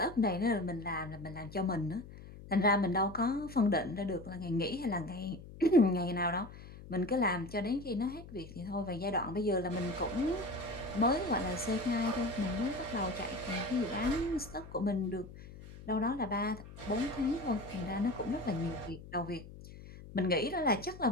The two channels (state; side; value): noise; left; hum, 16 dB below the sound